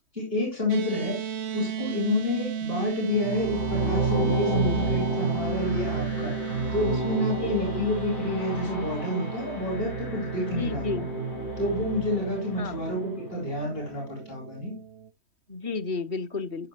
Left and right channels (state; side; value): late; left; 3.1 ms